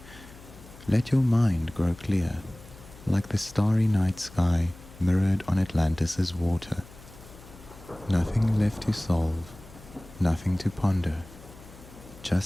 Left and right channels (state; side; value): noise; left; hum, 20 dB below the sound